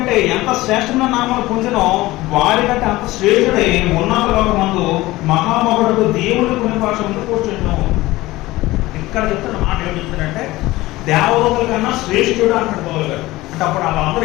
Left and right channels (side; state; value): right; quieter; 18.5 dB